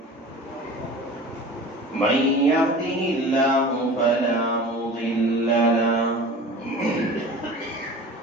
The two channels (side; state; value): both; normal; correlation 0.39